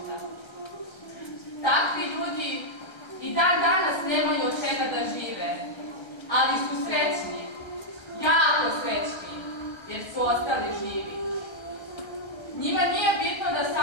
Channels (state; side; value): late; right; 1.3 ms